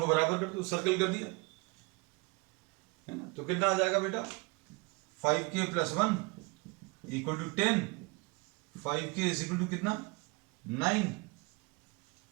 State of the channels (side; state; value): left; quieter; 27.1 dB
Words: बराबर कर दो, सर्कल कर दिया, है ना। तो कितना आ जाएगा बेटा? 5k plus 1 equal to 10, 5k is equal to कितना? 9,